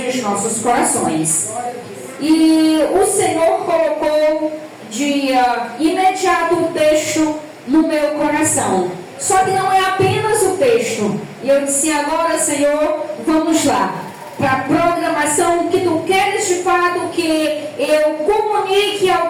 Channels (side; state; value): both; identical; correlation 1.00